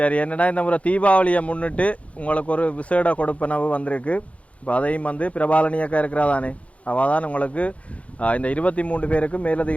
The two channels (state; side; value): late; right; 0.064 ms